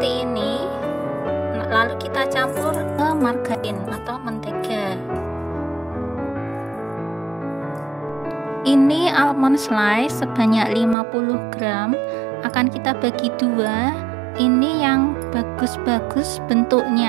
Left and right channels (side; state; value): left; drops out; at 11.0 s